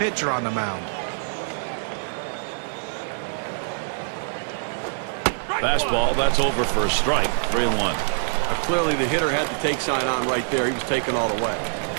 on the mound. Fastball, that's over for a strike. 3-1. Clearly the hitter had the take sign on right there. He was taken all the way.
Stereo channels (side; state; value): left; silent; 57 dB below the other